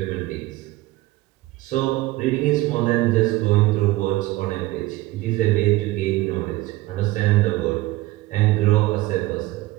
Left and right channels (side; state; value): left; quieter; 18.3 dB